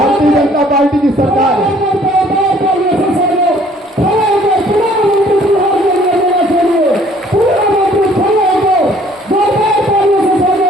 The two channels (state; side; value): normal; both; correlation 0.58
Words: जनता पार्टी की सरकार है।